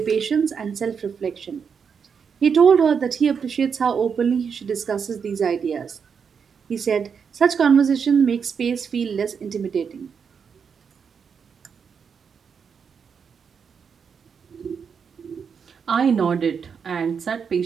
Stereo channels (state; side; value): quieter; left; 6.5 dB